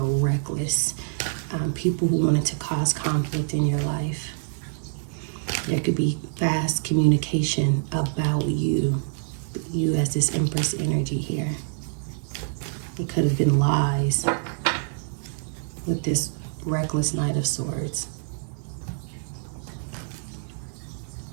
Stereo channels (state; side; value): silent; left; 61 dB below the other